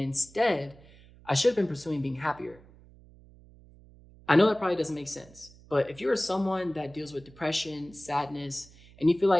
I should have been pursuing being happier. I know that probably doesn't make sense, but if you're someone that deals with depression, sadness, and you feel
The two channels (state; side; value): noise; right; hum, 24 dB below the sound